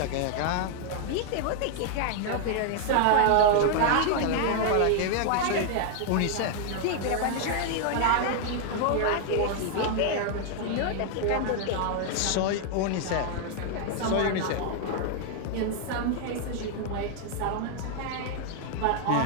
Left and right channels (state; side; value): different; both; correlation 0.00